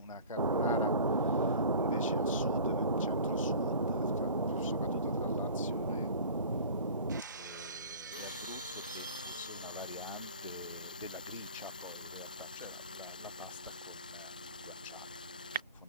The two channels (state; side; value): inverted; both; correlation -0.42